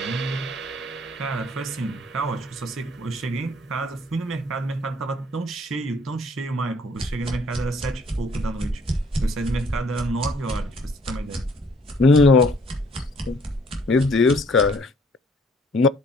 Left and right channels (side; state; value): both; normal; correlation 0.61